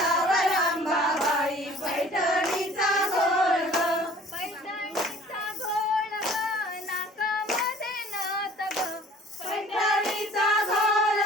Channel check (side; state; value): both; normal; correlation 0.51